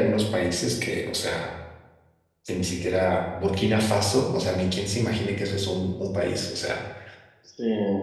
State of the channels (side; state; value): both; identical; correlation 1.00